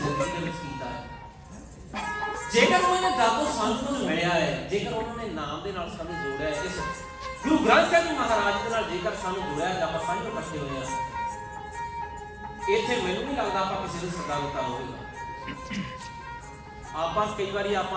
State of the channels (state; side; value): identical; both; correlation 1.00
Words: ਦੇ ਵਿੱਚ ਕੀਤਾ ਹੈ, ਜੇਕਰ ਉਹਨਾਂ ਨੇ ਦਾਤੋਂ ਸਾਨੂੰ ਕੁਝ ਮਿਲਿਆ ਹੈ, ਜੇਕਰ ਉਹਨਾਂ ਨੇ ਨਾਮ ਦੇ ਨਾਲ ਸਾਨੂੰ ਜੋੜਿਆ ਹੈ। ਇਸ ਗੁਰੂ ਗ੍ਰੰਥ ਸਾਹਿਬ ਜੀ ਮਹਾਰਾਜ ਦੇ ਨਾਲ ਜੇਕਰ ਸਾਨੂੰ ਜੋੜਿਆ ਹੈ, ਆਪਾਂ ਸਾਂਝੇ ਇਕੱਠੇ ਹੋਏ ਹਾਂ। ਇੱਥੇ ਮੈਨੂੰ ਨਹੀਂ ਲੱਗਦਾ ਆਪਾਂ ਕਿਸੇ ਨੂੰ ਸੱਦਾ ਦਿੱਤਾ ਹੋਵੇਗਾ। ਆਪਾਂ ਕਈ ਵਾਰੀ